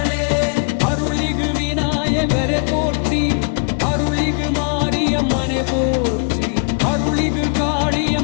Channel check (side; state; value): right; quieter; 38.4 dB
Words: அருளிகு விநாயகரே போற்றி அருளிகு மாரியம்மனே போற்றி அருளிகு